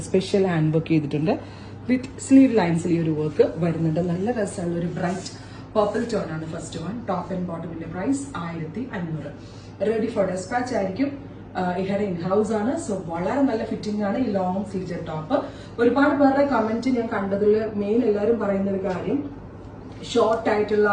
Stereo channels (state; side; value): identical; both; correlation 1.00